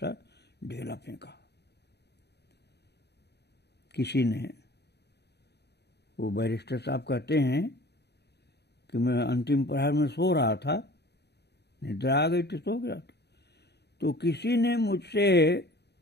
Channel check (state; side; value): late; right; 0.48 ms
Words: ढेला फेंका। किसी ने, वो बैरिस्टर साहब कहते हैं कि मैं अंतिम प्रहर में सो रहा था, निद्रा आ गई थी, सो गया था, तो किसी ने मुझसे